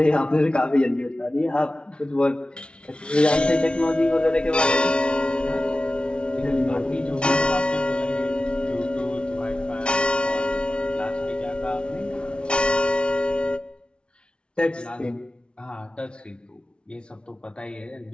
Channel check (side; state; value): right; late; 0.057 ms